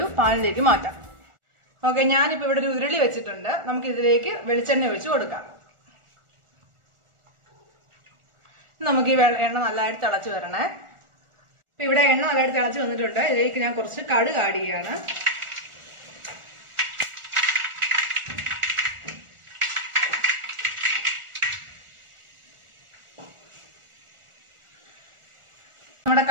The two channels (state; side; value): late; left; 1.4 ms